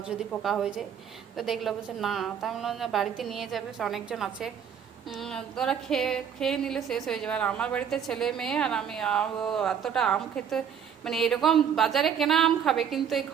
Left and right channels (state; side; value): quieter; left; 8.0 dB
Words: যদি পোকা হয়ে যায়, তো দেখলো বলছে না, তাই বললাম বাড়িতে নিয়ে যাবে, অনেকজন আছে, ওরা খেয়ে খেয়ে নিলে শেষ হয়ে যাবে। আর আমার বাড়িতে ছেলে মেয়ে আর আমি, এতটা আম খেতে, মানে এরকম বাজারে কেনা আম খাবে, কিন্তু এই